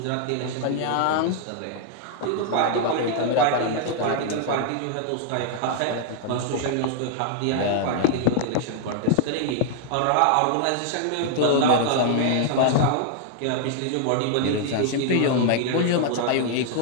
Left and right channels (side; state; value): both; different; correlation -0.01